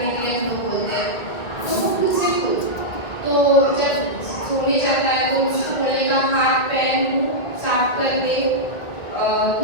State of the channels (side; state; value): right; late; 1.8 ms